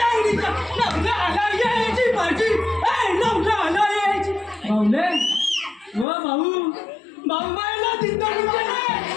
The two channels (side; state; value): right; drops out; at 6.1 s